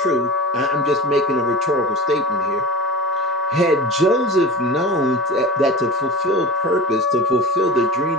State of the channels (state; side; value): normal; both; correlation 0.31